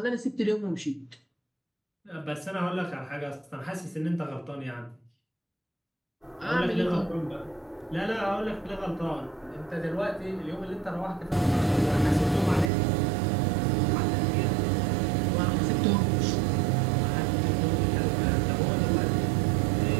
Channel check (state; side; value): drops out; left; at 12.7 s